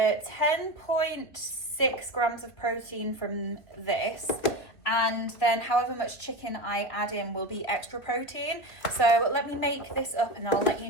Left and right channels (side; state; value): right; late; 2.5 ms